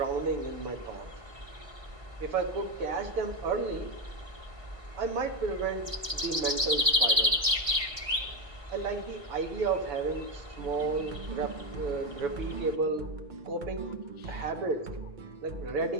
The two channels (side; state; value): left; late; 1.5 ms